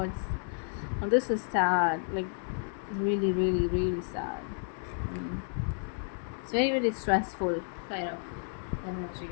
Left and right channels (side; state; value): right; silent; 57 dB below the other